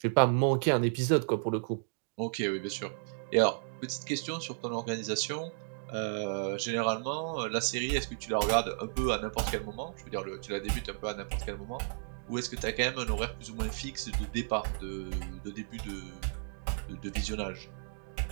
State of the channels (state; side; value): silent; left; digital silence